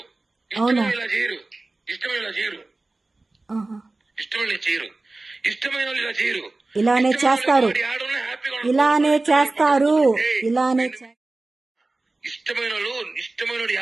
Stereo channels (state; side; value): quieter; left; 3.2 dB